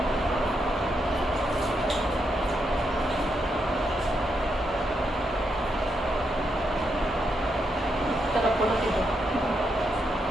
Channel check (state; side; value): normal; both; correlation 0.81